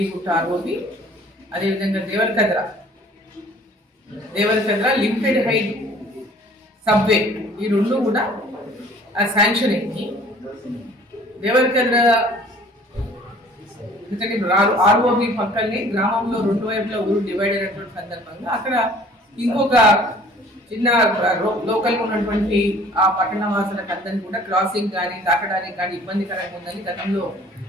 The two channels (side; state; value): both; normal; correlation 0.52